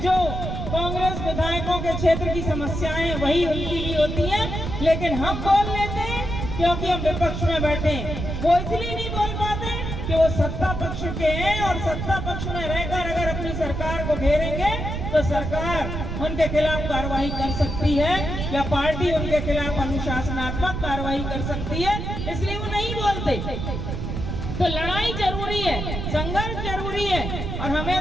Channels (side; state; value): right; noise; rumble, 4 dB below the sound